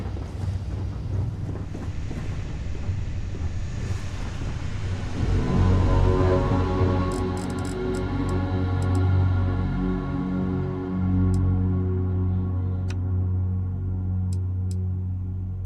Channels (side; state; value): both; identical; correlation 1.00